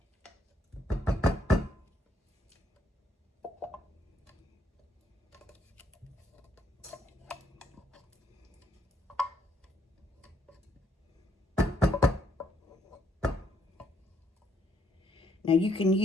Now, you can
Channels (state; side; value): normal; both; correlation 0.71